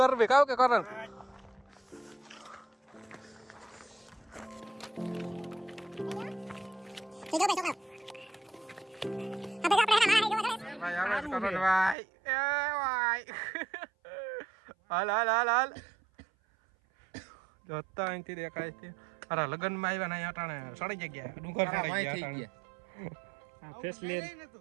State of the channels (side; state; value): left; drops out; at 12.0 s